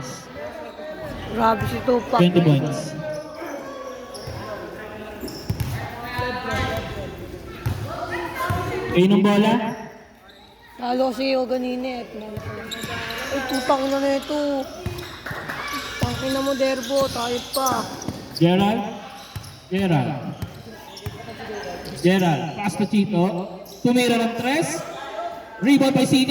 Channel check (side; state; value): both; identical; correlation 1.00